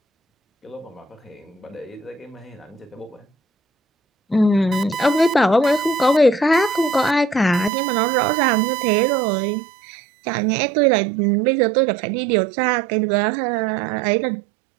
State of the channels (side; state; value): left; drops out; at 7.7 s